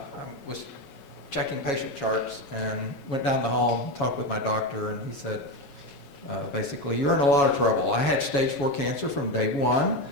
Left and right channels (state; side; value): late; right; 7.2 ms